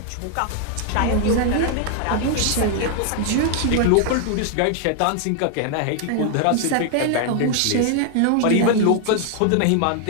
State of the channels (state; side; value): different; both; correlation 0.00